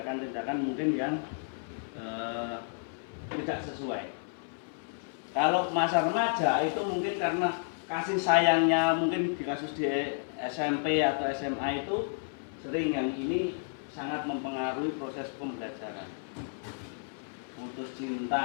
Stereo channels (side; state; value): right; silent; 57 dB below the other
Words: mungkin yang tidak sesuai. Kalau masa remaja itu mungkin karena kasih sayangnya, mungkin di kasus di SMP atau SMA itu sering yang ini sangat mempengaruhi proses pembelajaran. Putus